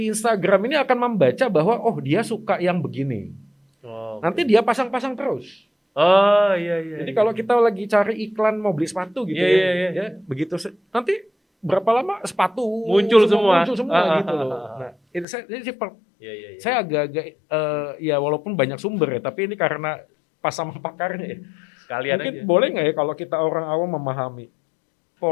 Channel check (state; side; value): drops out; right; at 15.2 s